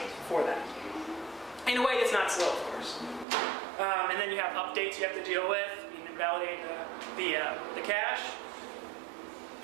for that. In a way, it's not slow, of course. And then you have updates you have to deal with, invalidate the cache.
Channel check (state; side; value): drops out; left; at 3.2 s